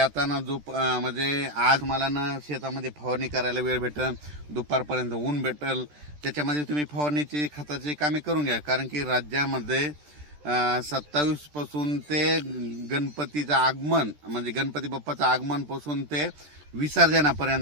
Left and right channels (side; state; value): left; late; 13 ms